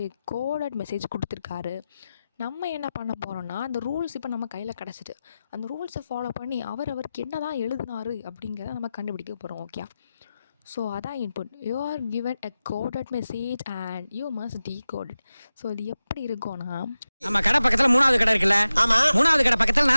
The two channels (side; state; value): both; inverted; correlation -0.94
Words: கோடட் மெசேஜ் கொடுத்துருக்காரு. நம்ம என்ன பண்ண போகிறோம்னா, அந்த ரூல்ஸ் இப்போ நம்ம கையில் கிடச்சிட்டு அந்த ரூல்ஸை ஃபாலோ பண்ணி அவருக்கு என்ன தான் எழுதினாரு அப்படிங்கிறத நம்ம கண்டுபிடிக்க போகிறோம். ஓகே, ஸோ அதான் input. You are given a coded message and you must decode it. So இது எப்படி இருக்கும்னா, நம்ம கடை பக்கத்துல 3வது கடை இருக்குல்ல, ஆமா, 3வது கடை பக்கத்துல